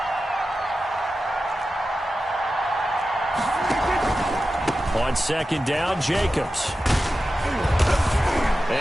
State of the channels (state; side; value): normal; both; correlation 0.93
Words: On second down, Jacobs.